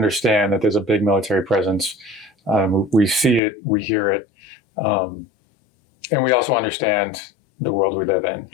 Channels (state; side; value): drops out; right; at 3.4 s